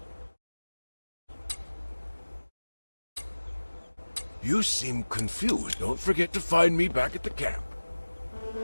You seem confused. Don't forget to find me back at the camp.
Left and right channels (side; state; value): both; inverted; correlation -1.00